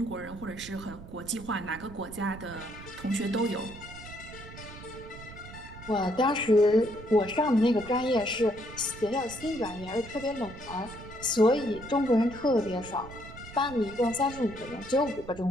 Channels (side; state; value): right; noise; rumble, 15 dB below the sound